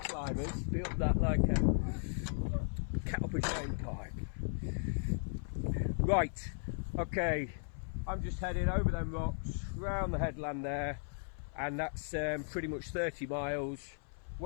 be up that like a caliper drain pipe. Right, okay, I'm just heading over them rocks, round the headland there, and that's pretty much 30 miles,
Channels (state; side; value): silent; right; 53 dB below the other